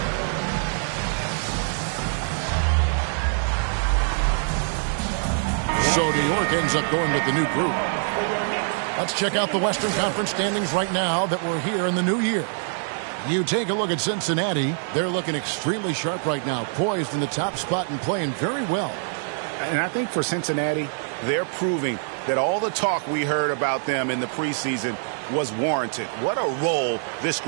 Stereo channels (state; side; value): silent; left; 62 dB below the other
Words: So New York ends up going with the new group. Let's check out the Western Conference standings right now that we're here in the new year. You take a look at Cincinnati. They're looking extremely sharp right now, poised in the top spot and playing very well. And I think for Cincinnati, they're proving that all the talk we heard about them in the preseason was warranted. What a role this